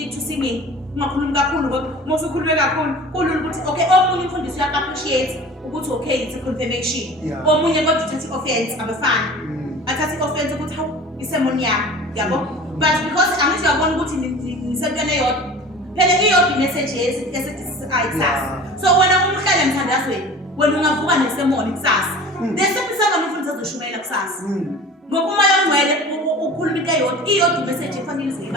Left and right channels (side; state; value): both; normal; correlation 0.40